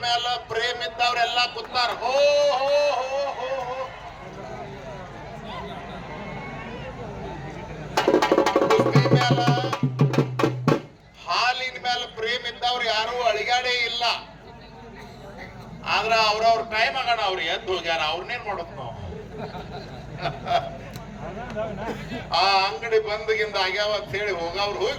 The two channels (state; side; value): identical; both; correlation 1.00